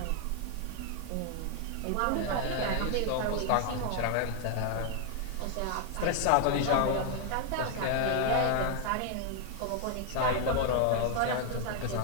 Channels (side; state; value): both; different; correlation 0.00